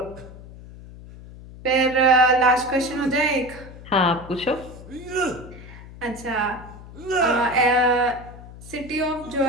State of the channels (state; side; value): noise; left; hum, 16 dB below the sound